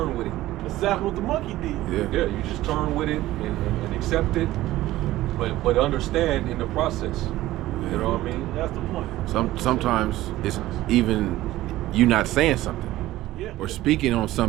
with it. That's exactly what the monkey did. Yeah. You just turn with it and accept it, but understand in the process. You know what I mean? That's the point. Sometimes it's even you not saying something, or speaking on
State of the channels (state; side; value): quieter; left; 15.9 dB